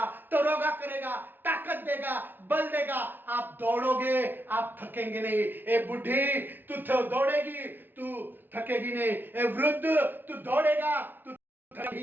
तरोगा करेगा, ताकत देगा, बल देगा। आप दौड़ोगे, आप थकेंगे नहीं। ए बुढ़ी, तू दौड़ेगी, तू थकेगी नहीं। ए वृद्ध, तू दौड़ेगा, तू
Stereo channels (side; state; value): left; late; 0.094 ms